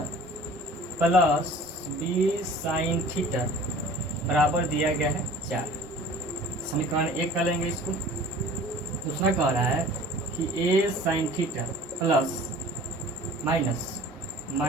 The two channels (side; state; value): both; normal; correlation 0.46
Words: plus b sin theta बराबर दिया गया है 4। समीकरण 1 कर लेंगे इसको। दूसरा कह रहा है कि a sin theta plus